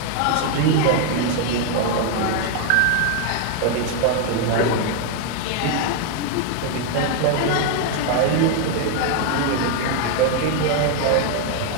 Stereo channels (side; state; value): both; different; correlation 0.01